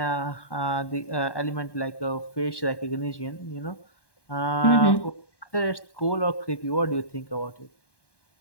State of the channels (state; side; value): late; right; 1.2 ms